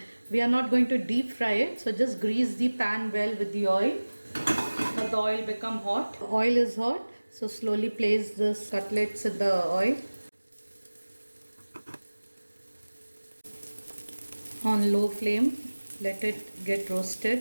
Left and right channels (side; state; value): both; inverted; correlation -1.00